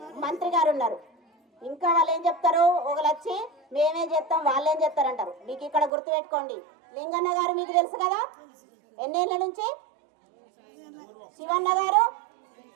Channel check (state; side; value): drops out; left; at 5.9 s